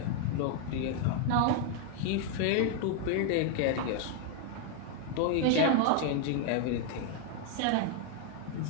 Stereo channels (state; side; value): different; both; correlation 0.00